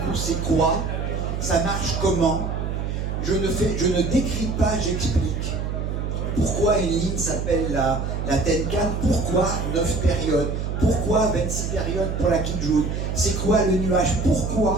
c'est quoi? Ça marche comment? Je ne décris pas, j'explique. Pourquoi une ligne s'appelle la Tenkan? Pourquoi 9 périodes? Pourquoi 26 périodes pour la Kijun? C'est quoi le nuage?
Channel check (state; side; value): noise; right; hum, 3 dB below the sound